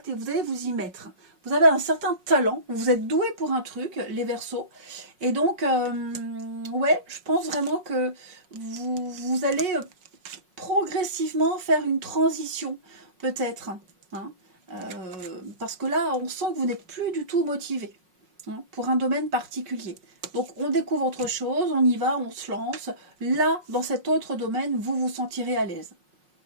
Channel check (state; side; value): late; left; 5.5 ms